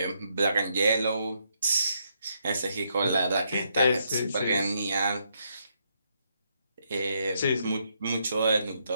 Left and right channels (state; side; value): inverted; both; correlation -0.77